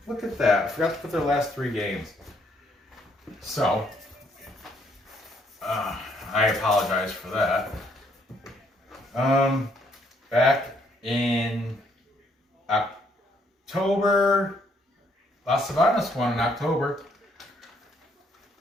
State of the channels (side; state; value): both; normal; correlation 0.69